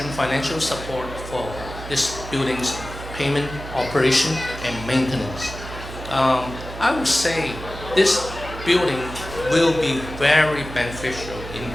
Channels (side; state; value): right; noise; hum, 11 dB below the sound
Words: financial support for this building's payment, operation, and maintenance. I would say this building will be very beneficial in